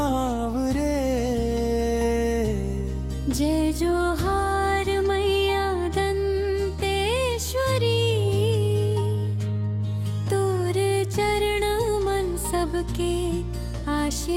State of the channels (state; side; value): identical; both; correlation 1.00